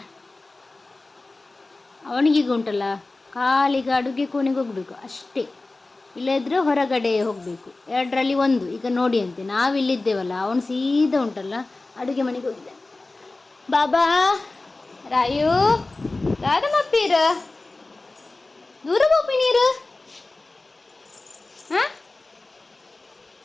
ಅವನಿಗೀಗ ಉಂಟಲ್ಲ ಕಾಲಿಗೆ ಅಡುಗೆ ಕೋಣೆಗೆ ಹೋಗ್ಬೇಕು ಅಷ್ಟೇ, ಇಲ್ಲದ್ರೆ ಹೊರಗಡೆ ಹೋಗಬೇಕು, ಎರಡರಲ್ಲಿ ಒಂದು. ಈಗ ನೋಡಿ ಅಂತೆ ನಾವಿಲ್ಲಿದ್ದೇವಲ್ಲ, ಅವನು ಸೀದಾ ಉಂಟಲ್ಲ ಅಡುಗೆ ಮನೆಗೆ ಹೋಗಿದ್ದಾನೆ. ಬಾಬಾ ರಾಯು ದಾದಮಪ್ಪೀರ ದೂರ ಹೋಗಿ ನೀರು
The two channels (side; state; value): right; quieter; 3.2 dB